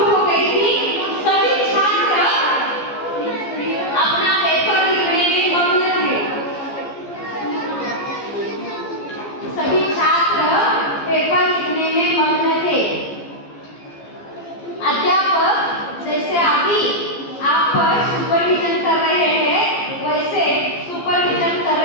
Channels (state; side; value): late; right; 14 ms